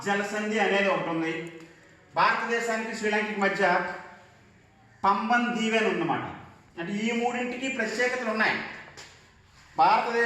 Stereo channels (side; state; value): both; identical; correlation 1.00